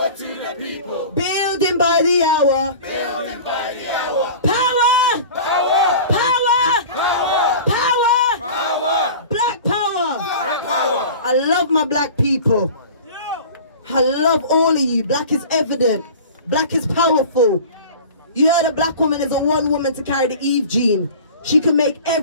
to the people. Building by the hour. Building by the hour. Power! Power! Power! Power! Power! Power! Black power! Black power! I love my black people. I love all of you. Black is evident. Black is powerful. You heard a black woman is a one woman to carry the Eve gene. She can make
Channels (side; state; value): both; inverted; correlation -0.39